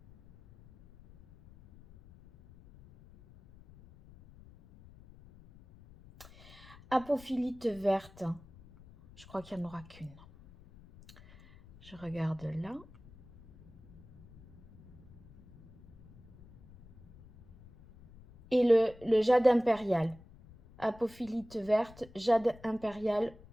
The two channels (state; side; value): noise; left; rumble, 22 dB below the sound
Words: Apophilite verte, je crois qu'il n'y en aura qu'une. Je regarde là. Et le jade impérial. Apophilite verte, jade impérial